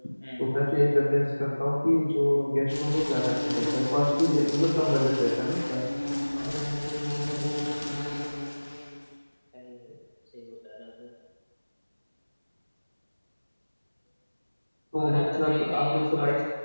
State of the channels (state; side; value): inverted; both; correlation -1.00